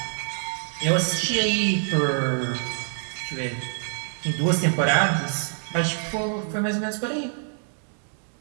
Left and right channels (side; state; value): left; silent; 61 dB below the other